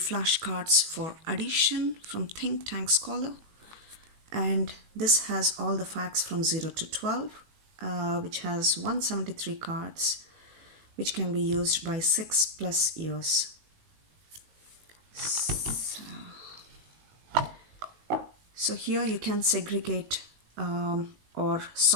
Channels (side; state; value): left; late; 19 ms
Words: for addition from Think Tank Scholar, and this has all the facts from 0 to 12, which has 173 cards which can be used by 6+ years. So here you can segregate or